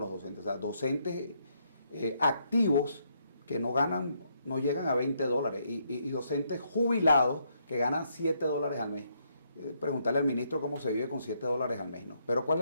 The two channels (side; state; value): both; inverted; correlation -0.74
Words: los docentes. O sea, docentes activos que no ganan, no llegan a $20 y docentes jubilados que ganan $7 al mes. Preguntarle al ministro cómo se vive con $7 al mes, ¿no? Pero ¿cuál